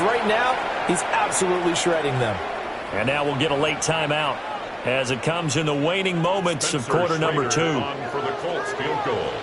right now, he's absolutely shredding them. And now we'll get a late timeout as it comes in the waning moments of quarter number 2. For the Colts field goal.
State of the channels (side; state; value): both; identical; correlation 1.00